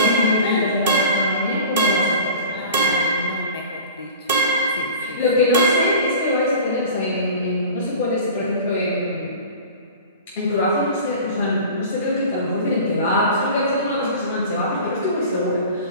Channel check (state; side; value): inverted; both; correlation -0.39